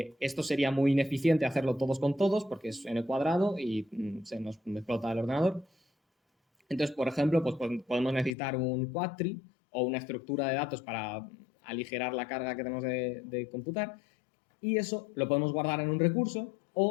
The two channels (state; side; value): drops out; right; at 8.3 s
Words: sería muy ineficiente hacerlo todos con todos porque es n cuadrado y se nos explota el ordenador. Entonces, por ejemplo, pues podemos necesitar un quadtree o una estructura de datos para aligerar la carga que tenemos de computar, y eso lo podemos guardar en un recurso,